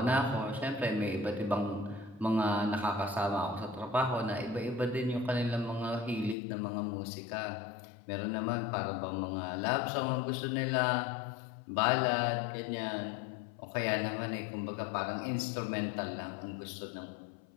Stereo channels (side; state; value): right; drops out; at 6.4 s